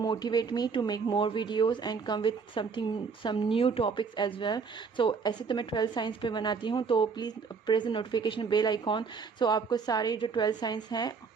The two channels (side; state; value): left; quieter; 5.4 dB